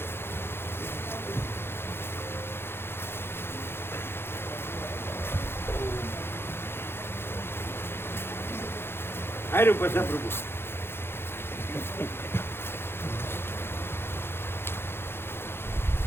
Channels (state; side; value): late; right; 0.11 ms